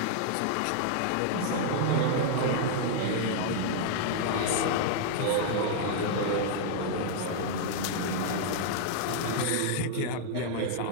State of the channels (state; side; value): different; both; correlation -0.01